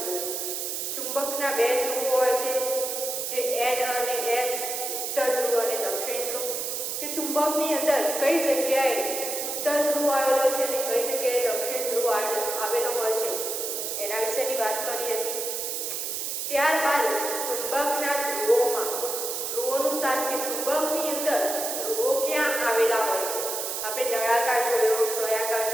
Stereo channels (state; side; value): noise; right; hiss, 3 dB below the sound